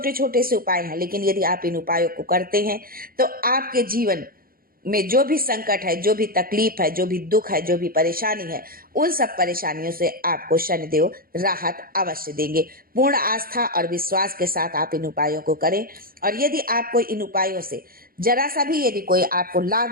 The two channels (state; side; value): late; left; 0.42 ms